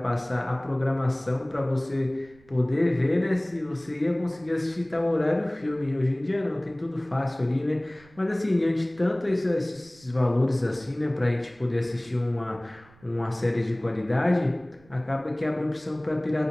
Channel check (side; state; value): right; noise; rumble, 27 dB below the sound